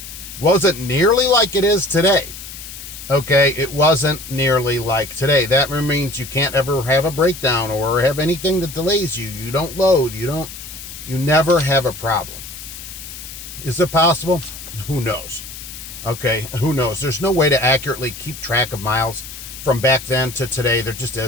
wasn't nearly like it is today. Okay, it wasn't nearly like today. That means you can't ever have a breakdown or have anything that delays you. You don't load. You never have a problem. Is it possible? Who knows? Okay, who knows? There's no way to accurately keep track of miles from back then to today. There just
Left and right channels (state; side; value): noise; left; hiss, 12 dB below the sound